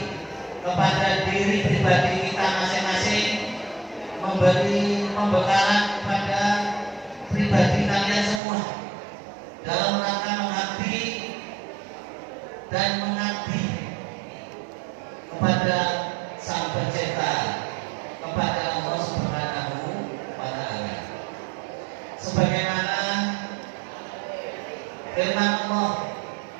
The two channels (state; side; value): drops out; left; at 8.4 s